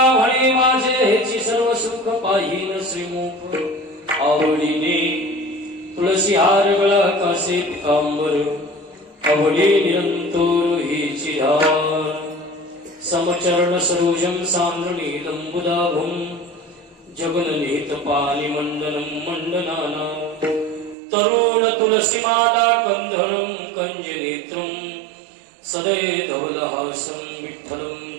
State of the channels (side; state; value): left; drops out; at 21.0 s